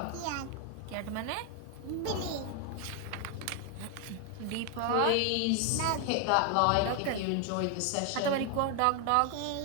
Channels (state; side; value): different; both; correlation 0.00